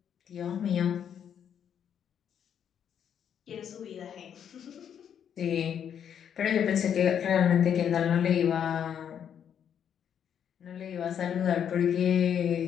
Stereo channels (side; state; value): right; quieter; 8.6 dB